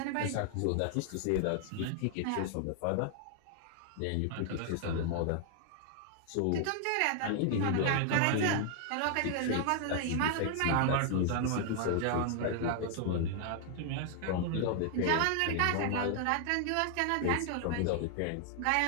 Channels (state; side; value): different; both; correlation 0.00